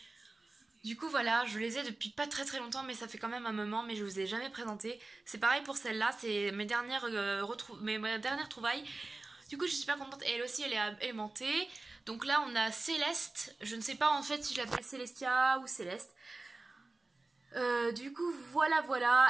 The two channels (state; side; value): quieter; left; 3.2 dB